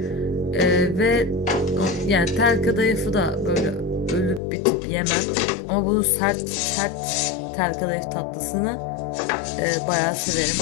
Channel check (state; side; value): drops out; right; at 4.4 s